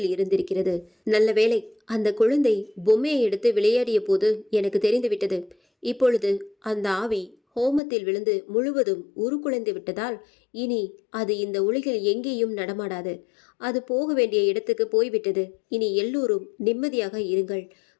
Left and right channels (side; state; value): right; drops out; at 7.8 s